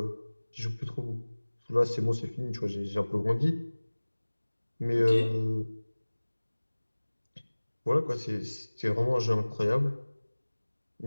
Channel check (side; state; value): both; inverted; correlation -1.00